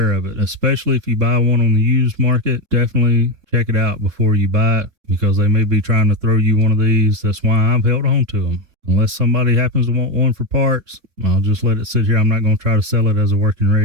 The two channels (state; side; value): late; left; 3.6 ms